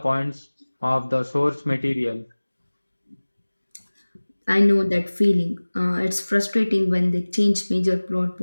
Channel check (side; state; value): both; inverted; correlation -1.00